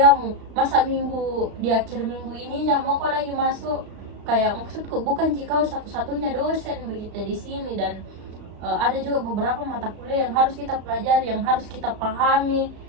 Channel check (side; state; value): left; late; 35 ms